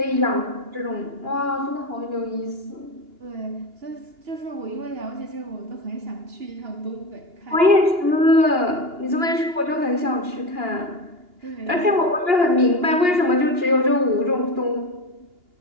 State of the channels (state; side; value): late; left; 2.8 ms